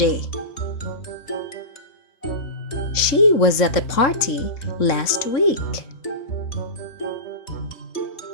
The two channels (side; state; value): right; late; 3.7 ms